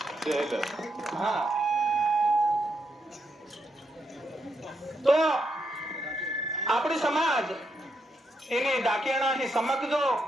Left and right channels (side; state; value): both; normal; correlation 0.81